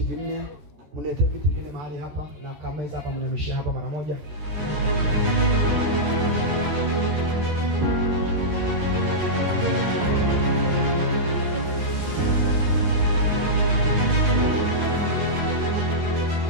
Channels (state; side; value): late; left; 13 ms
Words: vinne, mnete viti vinne mahali hapa na kameza hapa, mnameshia hapa mara moja.